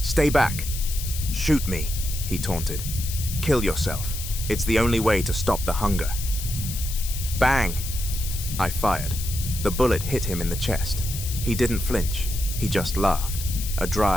back!" "Shoot me," he taunted. "Kill yourself. It's the only way to stop the hunger." Bang! I fired. The bullet hit him in the chest. He didn't flinch. He just laughed. A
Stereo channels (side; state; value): left; noise; hiss, 8 dB below the sound